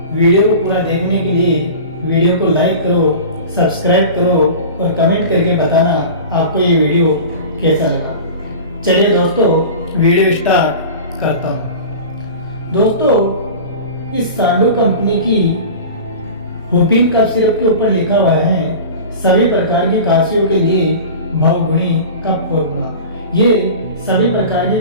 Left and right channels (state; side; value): inverted; both; correlation -0.35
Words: वीडियो को पूरा देखने के लिए वीडियो को लाइक करो, सब्सक्राइब करो और कमेंट करके बताना आपको ये वीडियो कैसा लगा। चलिए दोस्तों, वीडियो स्टार्ट करता हूँ। दोस्तों, इस सांडू कंपनी की हुपिन कफ सिरप के ऊपर लिखा हुआ है सभी प्रकार की काशियों के लिए बहुगुणी कफ फॉर्मूला। ये सभी प्रकार